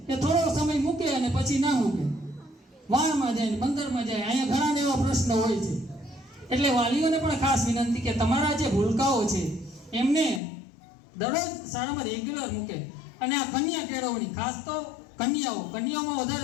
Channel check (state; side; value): drops out; right; at 10.4 s